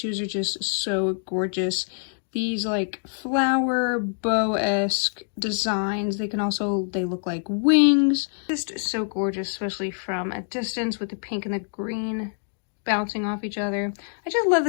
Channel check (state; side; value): silent; right; digital silence